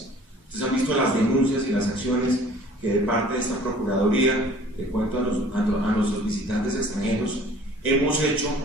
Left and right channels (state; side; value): normal; both; correlation 0.51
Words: Ustedes han visto las denuncias y las acciones que de parte de esta Procuraduría, le cuento a nuestros visitantes extranjeros, hemos hecho